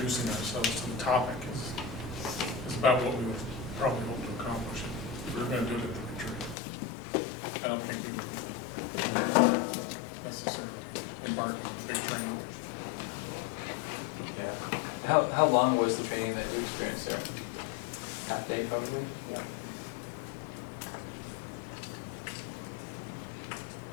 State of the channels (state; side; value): drops out; right; at 6.6 s